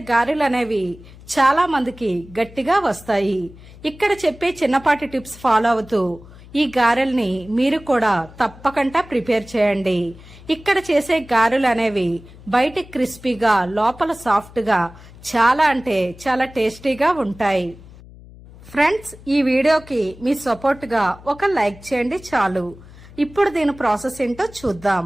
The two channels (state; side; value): noise; left; hum, 20 dB below the sound